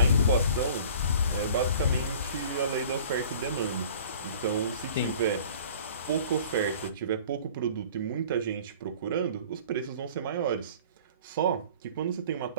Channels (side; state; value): both; inverted; correlation -0.47